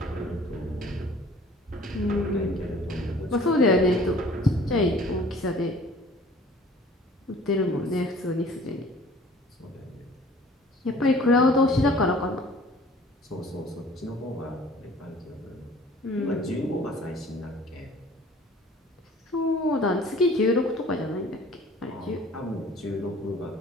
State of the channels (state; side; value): normal; both; correlation 0.50